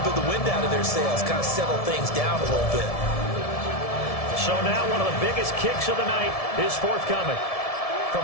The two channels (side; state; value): right; late; 1.7 ms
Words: bit of the wind out of their sails, kind of settle things down a little bit. So now one of the biggest kicks of the night is forthcoming. From